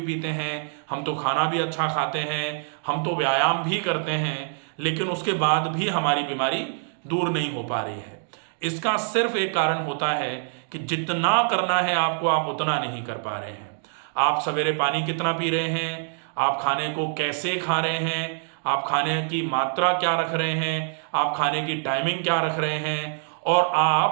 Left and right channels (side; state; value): left; silent; digital silence